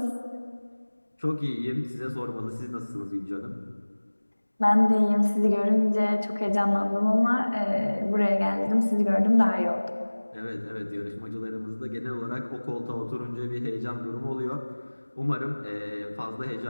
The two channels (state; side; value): inverted; both; correlation -1.00